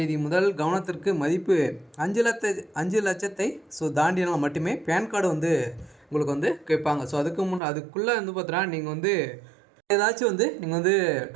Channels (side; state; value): left; drops out; at 7.6 s